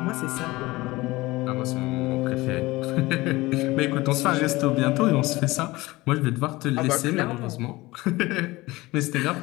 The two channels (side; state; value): right; quieter; 20.3 dB